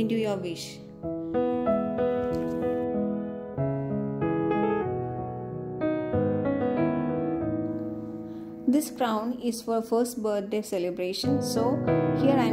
to your wish. This crown is for first birthday celebration, so here I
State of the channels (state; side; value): identical; both; correlation 1.00